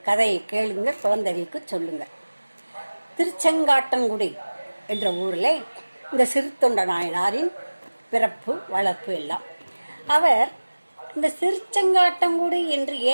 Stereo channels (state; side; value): inverted; both; correlation -1.00